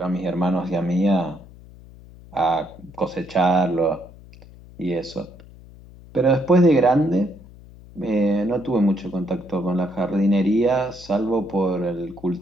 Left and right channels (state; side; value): noise; left; hum, 21 dB below the sound